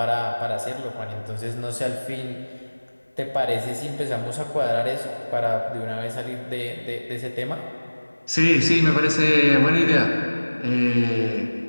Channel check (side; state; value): both; inverted; correlation -1.00